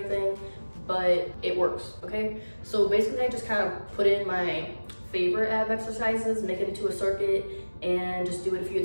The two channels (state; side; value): inverted; both; correlation -1.00